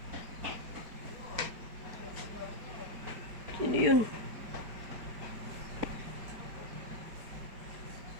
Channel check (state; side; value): late; left; 4.8 ms